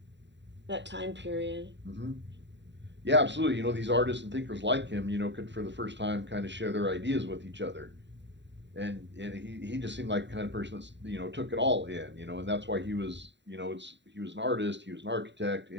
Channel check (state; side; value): late; left; 0.52 ms